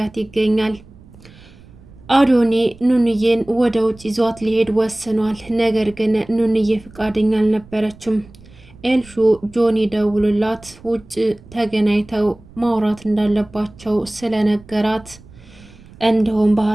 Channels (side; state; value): right; noise; rumble, 23 dB below the sound